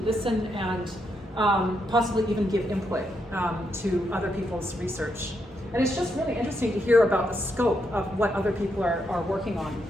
listen and possibly even give input to other people's research. And it's just really interesting to hear about the scope of what other people are working on.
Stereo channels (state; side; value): normal; both; correlation 0.80